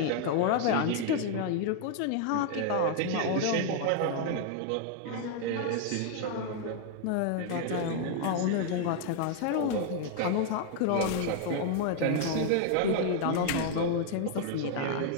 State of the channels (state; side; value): different; both; correlation 0.00